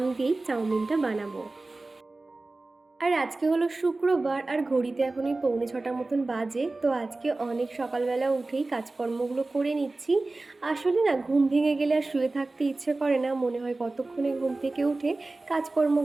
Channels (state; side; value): quieter; left; 3.2 dB